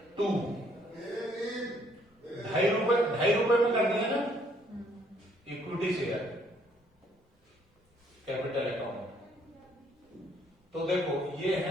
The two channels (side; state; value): both; normal; correlation 0.66